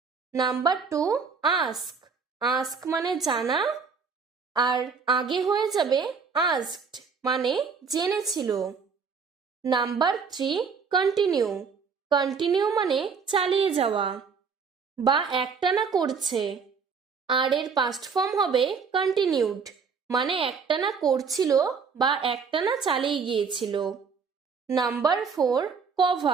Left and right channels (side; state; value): left; quieter; 5.6 dB